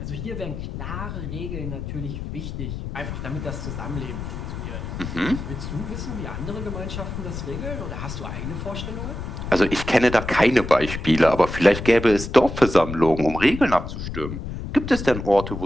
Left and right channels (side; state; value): left; noise; rumble, 7 dB below the sound